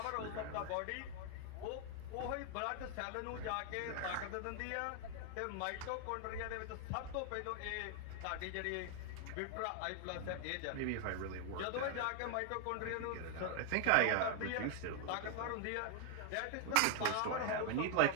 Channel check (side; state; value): both; different; correlation 0.00